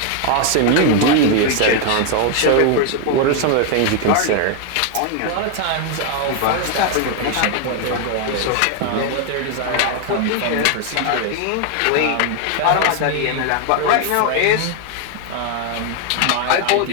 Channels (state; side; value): different; both; correlation 0.01